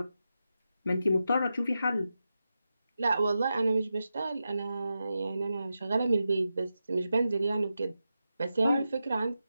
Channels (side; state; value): both; inverted; correlation -0.90